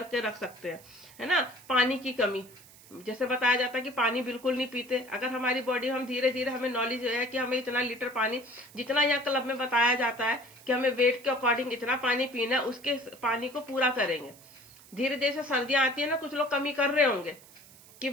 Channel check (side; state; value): right; noise; hiss, 22 dB below the sound